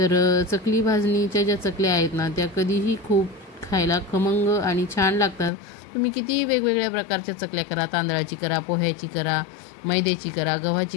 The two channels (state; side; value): drops out; right; at 5.5 s